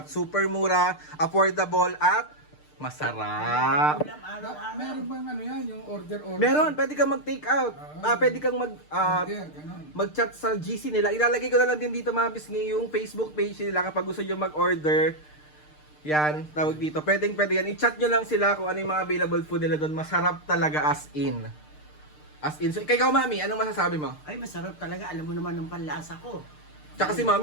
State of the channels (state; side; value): late; right; 6.6 ms